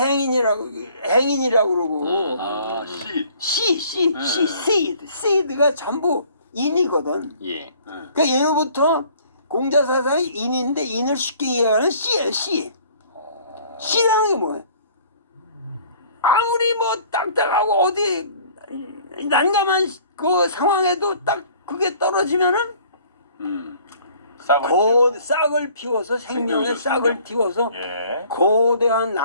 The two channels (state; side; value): inverted; both; correlation -0.54